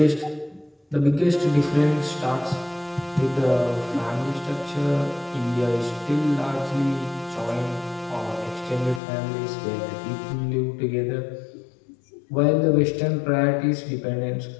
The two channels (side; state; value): right; drops out; at 9.0 s